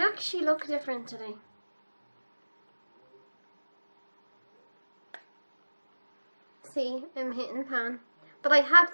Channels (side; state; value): both; inverted; correlation -1.00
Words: actually look different today. See, I'm hitting pan. But I had